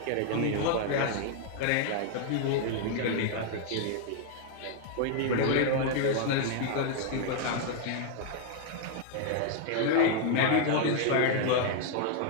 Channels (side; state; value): both; different; correlation 0.00